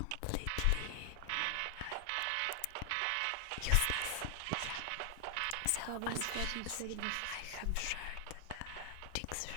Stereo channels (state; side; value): different; both; correlation 0.00